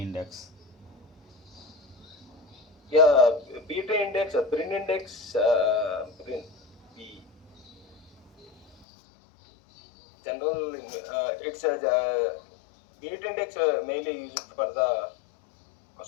Yeah, beta index, Brin index, Brin, B general. It's a beta index mainly used for the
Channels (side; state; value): right; drops out; at 8.8 s